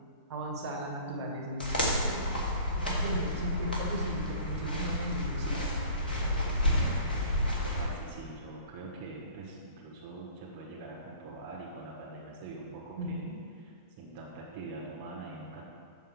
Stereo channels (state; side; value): inverted; both; correlation -0.46